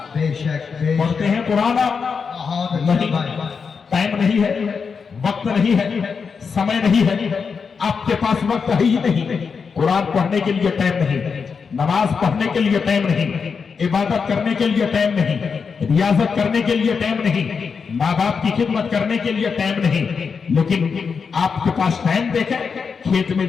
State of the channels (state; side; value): quieter; right; 5.7 dB